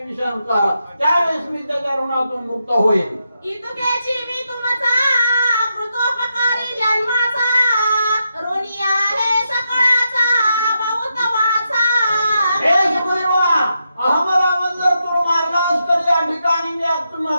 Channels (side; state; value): both; inverted; correlation -0.84